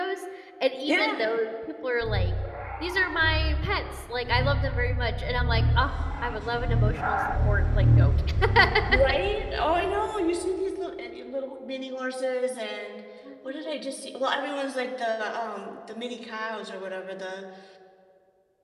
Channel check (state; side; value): identical; both; correlation 1.00